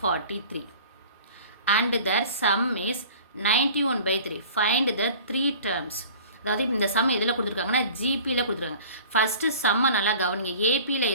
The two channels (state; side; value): inverted; both; correlation -0.44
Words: and their sum is 91/3. Find the three terms. அதாவது இந்த some எதில் கொடுத்துருக்காங்கன்னா ஜிபியில் கொடுத்துருக்காங்க. First சம்மை நல்லா கவனிங்க. ஏபியில்